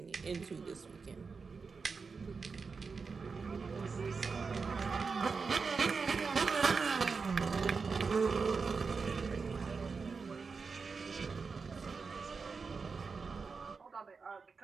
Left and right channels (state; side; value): quieter; left; 4.9 dB